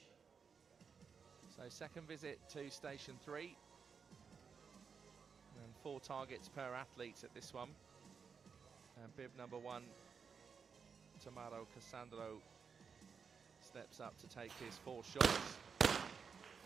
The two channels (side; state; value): left; quieter; 6.0 dB